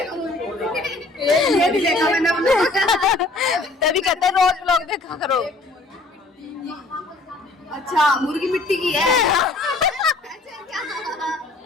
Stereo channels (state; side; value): quieter; right; 3.1 dB